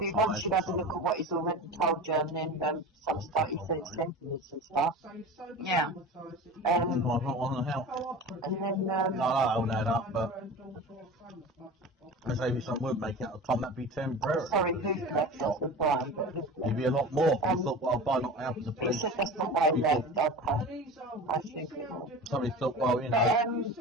once you have a look at what he's already told you, and then some stuff he said sentiments and stuff. Yeah. I'm not on the help. And then, No, I hold that up, but maybe some would make it at the time, that'd be temporary. sorry, who's left off with Brian, but It'd be a lot more. I thought, well, by not helping the he police, said that's not why he left, okay. I think it was. somebody thought, well, you know,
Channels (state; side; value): normal; both; correlation 0.33